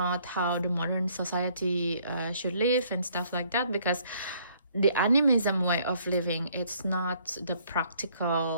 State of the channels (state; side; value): inverted; both; correlation -0.64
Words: how the modern society should live and stuff like that, because the animism way of living, it's not the